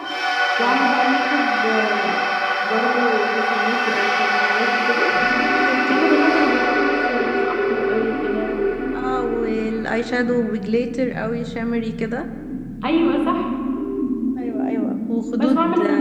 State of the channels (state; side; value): identical; both; correlation 1.00